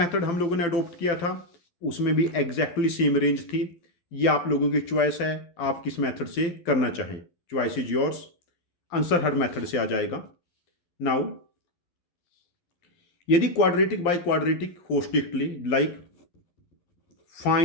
हम लोगों ने अडोप्ट किया था उसमें भी एग्जैक्टली सेम रेंज थी। ये आप लोगों की चॉइस है, आप किस मेथड से करना चाहें, choice is yours. Answer her method से आ जाएगा। नाउ यदि क्वाड्रेटिक बाय क्वाड्रेटिक हो strictly, like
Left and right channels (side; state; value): right; late; 12 ms